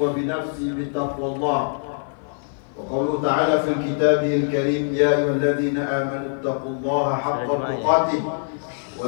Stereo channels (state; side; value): silent; right; 56 dB below the other